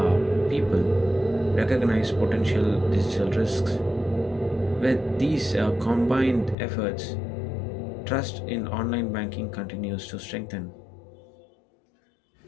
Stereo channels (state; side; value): drops out; right; at 6.6 s